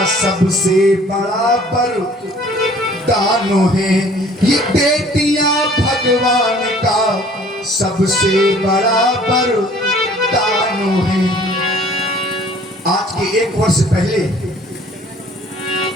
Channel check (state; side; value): normal; both; correlation 0.53